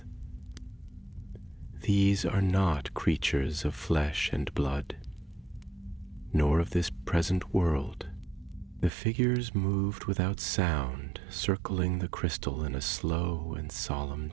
"These are not creatures of flesh and blood, nor of this present world." The figures moved without sound, circling the crystal in a slow and solemn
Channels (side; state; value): left; drops out; at 8.9 s